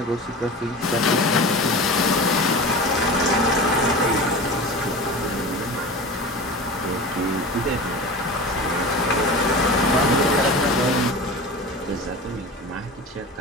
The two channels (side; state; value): both; normal; correlation 0.31